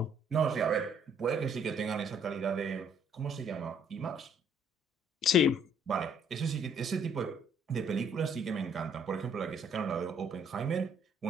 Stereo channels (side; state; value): both; normal; correlation 0.64